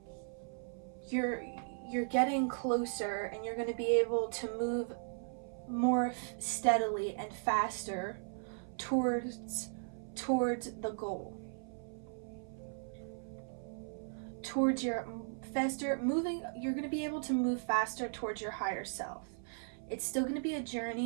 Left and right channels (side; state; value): left; silent; 53 dB below the other